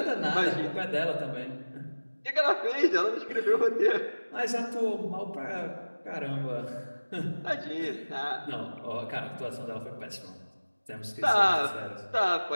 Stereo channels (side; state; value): both; inverted; correlation -1.00